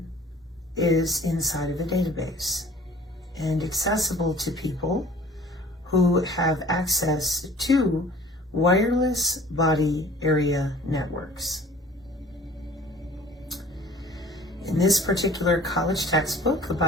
is inside of a database and accessible to people who have access to wireless body area networks. In this particular college textbook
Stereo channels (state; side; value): normal; both; correlation 0.49